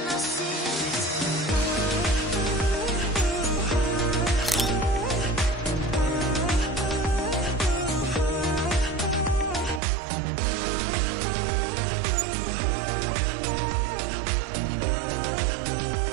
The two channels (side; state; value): left; drops out; at 9.8 s